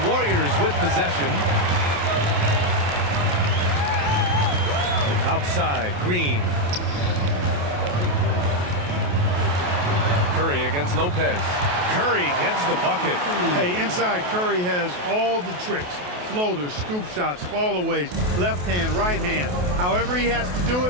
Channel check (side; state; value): left; late; 28 ms